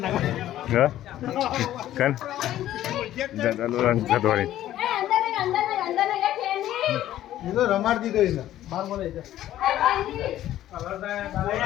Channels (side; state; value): right; quieter; 13.1 dB